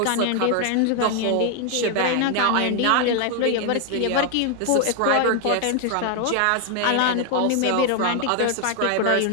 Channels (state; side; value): different; both; correlation 0.00